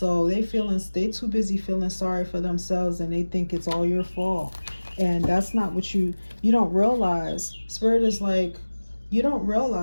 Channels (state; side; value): inverted; both; correlation -1.00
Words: they too busy feeling sorry for themselves, and they think it's all your fault. And that's not what you don't realize. Spirit is like, you don't